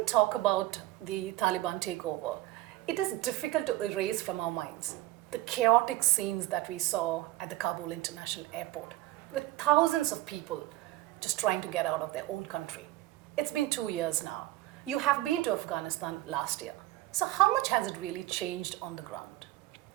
talk about the Taliban takeover, it is difficult to erase from our minds the chaotic scenes that we saw at the Kabul International Airport, with thousands of people just trying to get out of their own country. It's been 2 years now. You have been to Afghanistan last year. So how much has it really changed on the ground?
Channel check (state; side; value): quieter; left; 16.6 dB